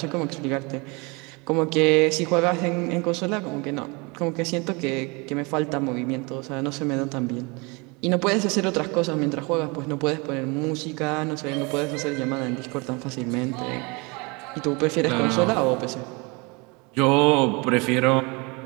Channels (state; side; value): quieter; left; 28.3 dB